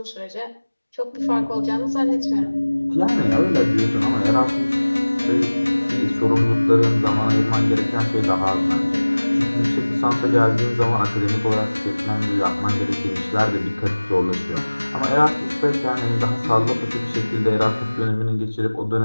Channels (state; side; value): inverted; both; correlation -1.00